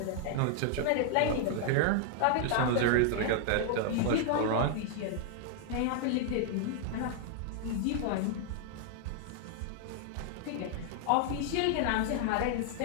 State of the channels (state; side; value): different; both; correlation 0.00